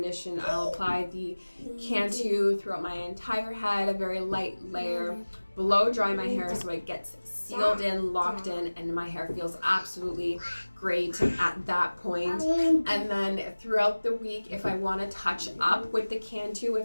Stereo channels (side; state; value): both; inverted; correlation -1.00